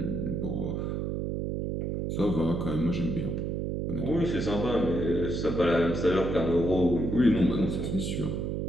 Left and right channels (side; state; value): right; noise; hum, 2 dB below the sound